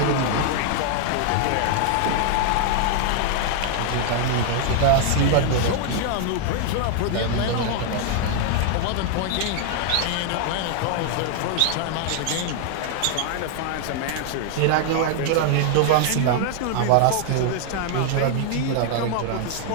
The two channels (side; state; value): both; different; correlation 0.00